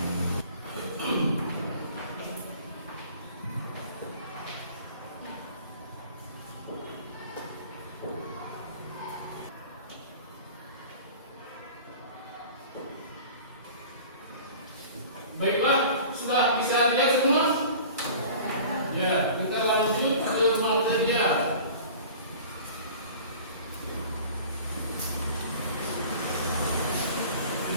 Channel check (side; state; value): both; inverted; correlation -0.43